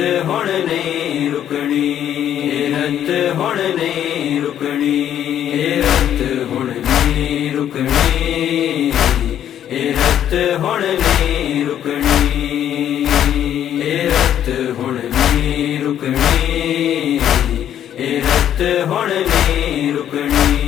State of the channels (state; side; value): quieter; right; 10.4 dB